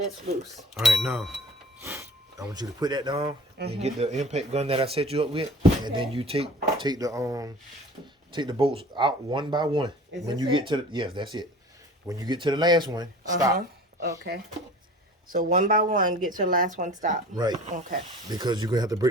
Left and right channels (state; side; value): normal; both; correlation 0.43